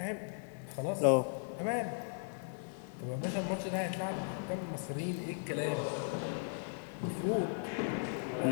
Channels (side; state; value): right; silent; digital silence